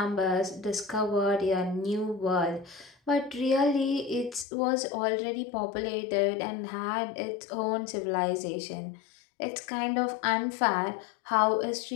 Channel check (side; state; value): right; drops out; at 4.5 s